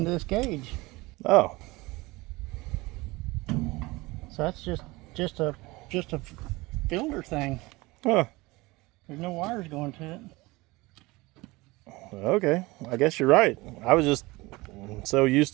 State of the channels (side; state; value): left; quieter; 22.0 dB